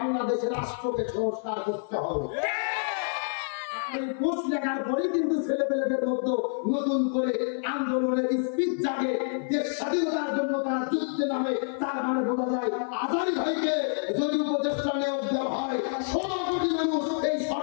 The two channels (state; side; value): silent; right; 56 dB below the other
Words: রাষ্ট্রকে সংস্কার করতে হবে। এই পোস্ট লেখার পরে কিন্তু ছেলেপেলেদের মধ্যে নতুন করে আন্দোলনের স্পিচ জাগে, দেশ স্বাধীনতার জন্য তারা যুদ্ধে নামে। তার মানে বোঝা যায় আজহারি ভাইকে যদি উপদেষ্টা নিয়োগ দেওয়া হয়, 16 কোটি মানুষ এই